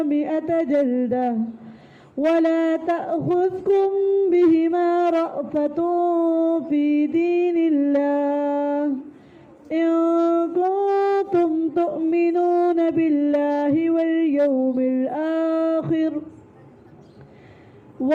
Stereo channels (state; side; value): identical; both; correlation 1.00